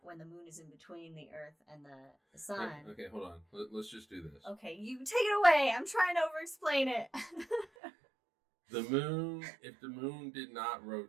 when the moon is in between the Earth and the sun. Okay, hold on. Let's just do this. Okay, you take it away. I'm trying to over-explain it. The moon, if the moon did not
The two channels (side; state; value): left; drops out; at 7.7 s